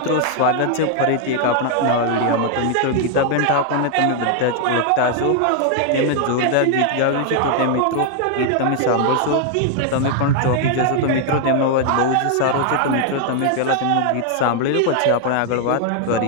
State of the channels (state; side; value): different; both; correlation 0.00